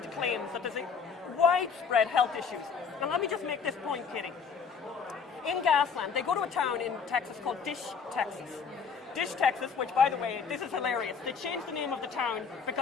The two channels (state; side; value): quieter; right; 5.9 dB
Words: claims that there's widespread health issues. Now let me just make this point, Katie. In Gasland, they go to a town in Texas called Dish, Texas. Dish, Texas, which, by the way, this is hilarious. They changed the name of the town